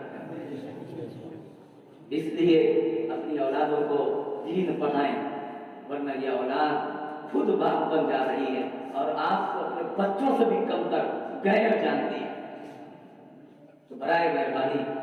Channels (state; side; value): identical; both; correlation 1.00